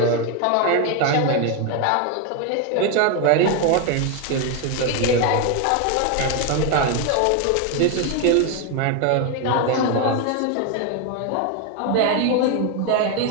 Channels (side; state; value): both; different; correlation 0.01